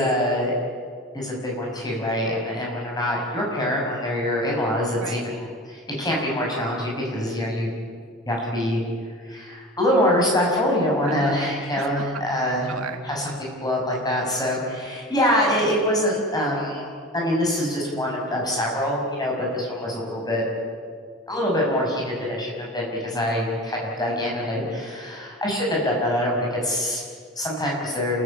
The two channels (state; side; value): normal; both; correlation 0.33